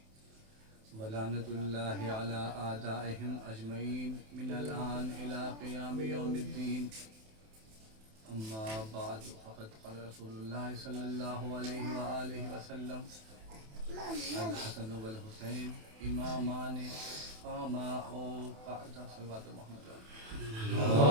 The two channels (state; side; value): late; left; 27 ms